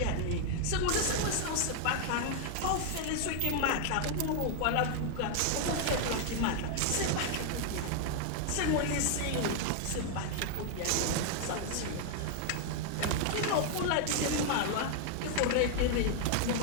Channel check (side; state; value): both; different; correlation 0.00